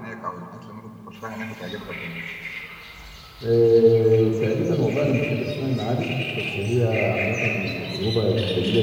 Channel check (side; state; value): both; identical; correlation 1.00